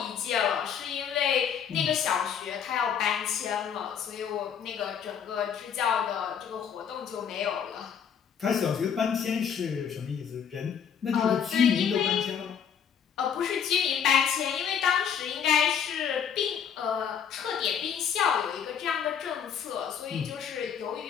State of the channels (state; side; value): quieter; right; 7.8 dB